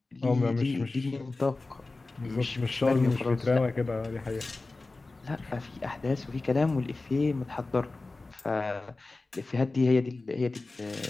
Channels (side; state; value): right; quieter; 3.4 dB